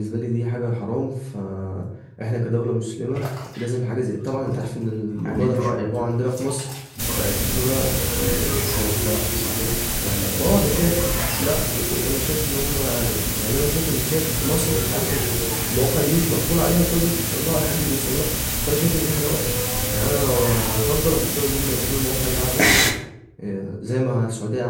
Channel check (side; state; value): both; identical; correlation 1.00